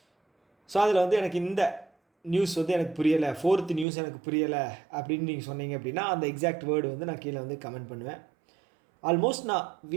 ஸோ அதில் எனக்கு இந்த நியூஸ் எனக்கு புரியலை, 4th நியூஸ் எனக்கு புரியலை அப்படின்னு நீங்கள் சொன்னீங்க அப்படின்னா அந்த எக்ஸாக்ட் வேர்டு நான் கீழே கமெண்ட் பண்ணுவேன். ஆல்மோஸ்ட் நான்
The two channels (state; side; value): drops out; left; at 3.9 s